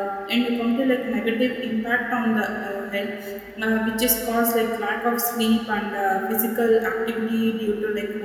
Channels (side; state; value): both; identical; correlation 1.00